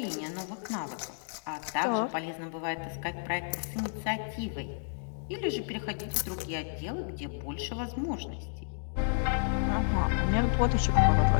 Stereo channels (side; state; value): right; silent; digital silence